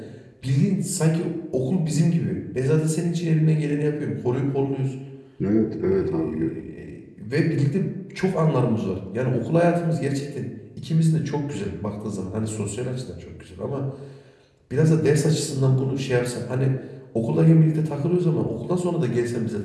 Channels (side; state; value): both; identical; correlation 1.00